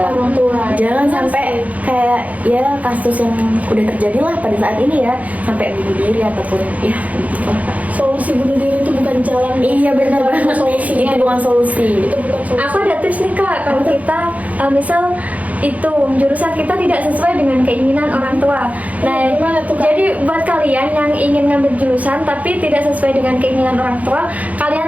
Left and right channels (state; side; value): late; left; 0.072 ms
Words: Orang tua. Jangan Benar sampai sekali. kayak ya kasus yang udah terjadi lah pada saat ini ya, sampai bunuh diri ataupun ya gitu lah, Kak. Solusi bunuh diri itu bukan jalan. Iya benar Bukan banget. solusinya. Itu bukan solusi. Itu bukan solusi. Aku ada tips nih Kak, kalau kita misal itu jurusan kita tidak sesuai dengan keinginan orang tua. Nah, Gimana tuh, Kak? jadi buat kalian yang ingin ngambil jurusan tapi tidak sesuai dengan keinginan orang tua,